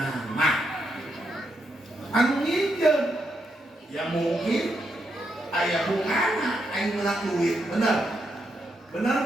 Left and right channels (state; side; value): normal; both; correlation 0.81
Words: Anu nginjeun ya mungkin aya bungana aing meunang duit, bener